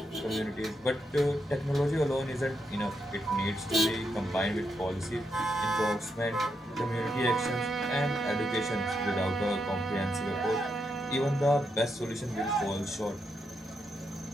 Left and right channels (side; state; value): both; normal; correlation 0.82